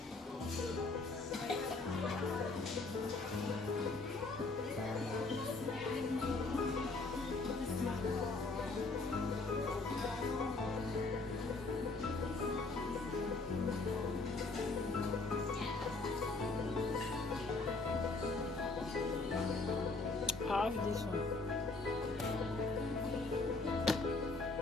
I have this one.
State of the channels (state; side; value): quieter; right; 3.5 dB